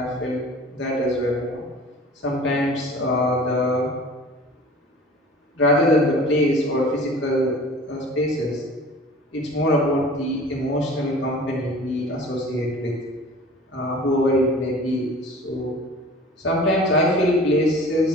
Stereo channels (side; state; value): both; normal; correlation 0.43